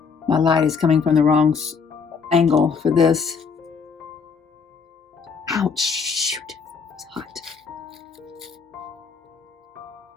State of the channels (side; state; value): right; quieter; 5.6 dB